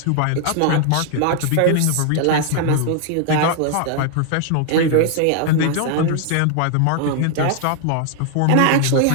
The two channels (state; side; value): different; both; correlation 0.00